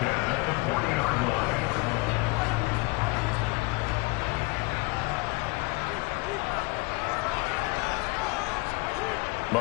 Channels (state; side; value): quieter; right; 26.2 dB